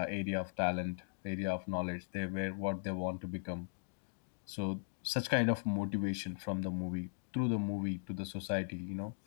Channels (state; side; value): silent; right; digital silence